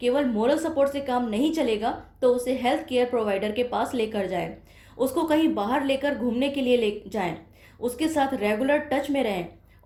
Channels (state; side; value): identical; both; correlation 1.00